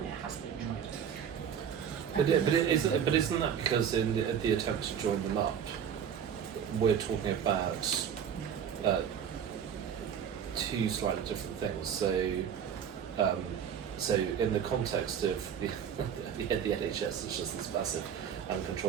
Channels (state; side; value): quieter; left; 8.3 dB